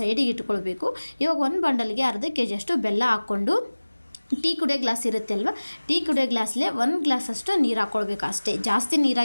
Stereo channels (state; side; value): inverted; both; correlation -1.00